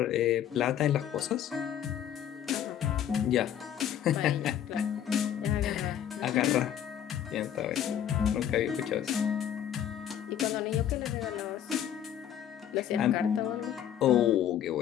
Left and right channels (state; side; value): quieter; right; 10.0 dB